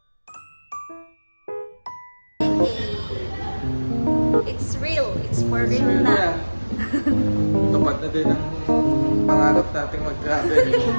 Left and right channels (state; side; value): inverted; both; correlation -1.00